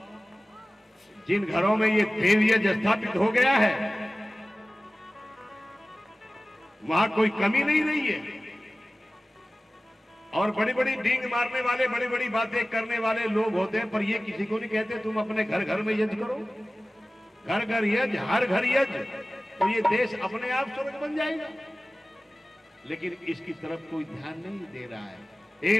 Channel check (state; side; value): normal; both; correlation 0.97